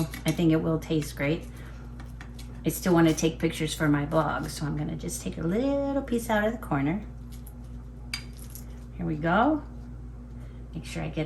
I think it will taste great. I still want to take pictures for my blog, so I'm going to just take a little piece out of the corner. Here we go. Make sure I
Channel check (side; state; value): both; identical; correlation 1.00